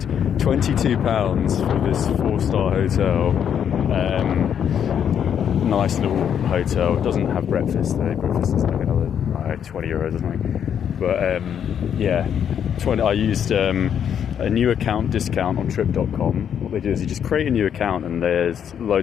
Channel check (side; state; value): right; quieter; 8.6 dB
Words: for this 4-star hotel. Nice little hotel. It doesn't have breakfast though. Breakfast is like another €20 or something. But I used a new account discount on Trip.com. What they do is you just create a new account, and there's